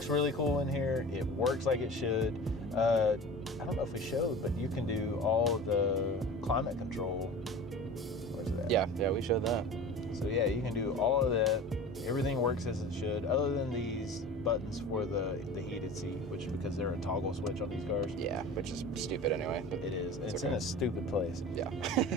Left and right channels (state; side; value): normal; both; correlation 0.36